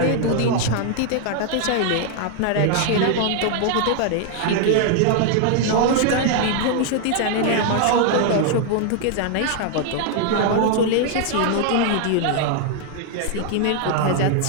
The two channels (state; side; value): different; both; correlation 0.00